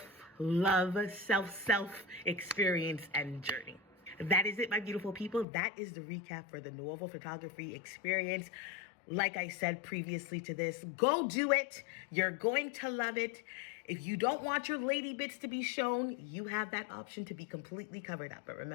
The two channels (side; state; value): right; drops out; at 5.5 s